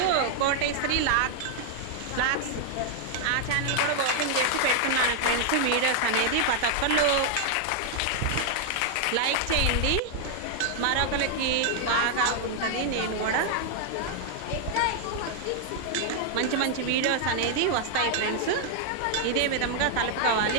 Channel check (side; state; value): both; different; correlation 0.00